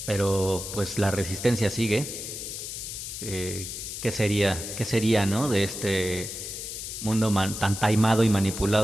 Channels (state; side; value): noise; left; hiss, 7 dB below the sound